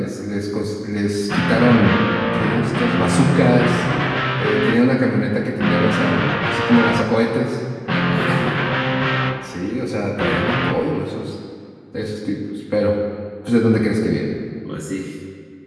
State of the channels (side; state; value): both; identical; correlation 1.00